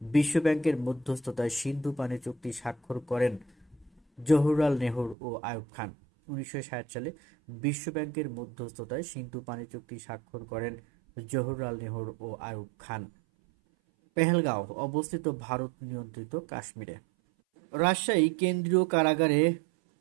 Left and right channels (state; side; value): drops out; left; at 5.2 s